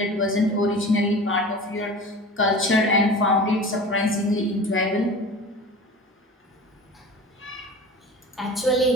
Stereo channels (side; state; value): both; normal; correlation 0.37